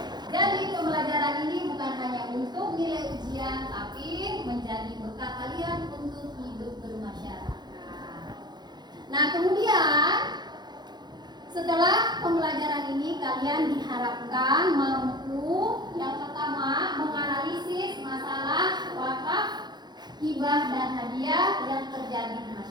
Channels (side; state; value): left; late; 0.21 ms